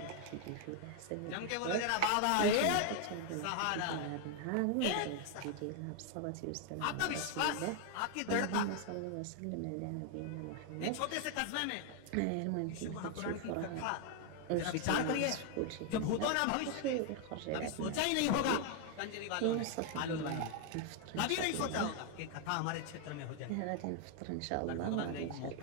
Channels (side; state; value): both; different; correlation 0.00